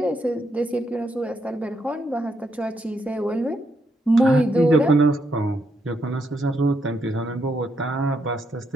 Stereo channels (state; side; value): normal; both; correlation 0.78